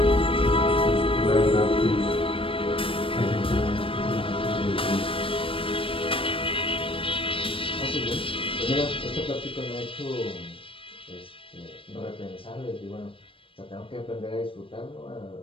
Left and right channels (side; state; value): right; late; 0.26 ms